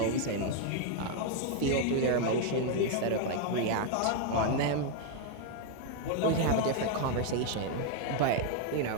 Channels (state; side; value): different; both; correlation 0.01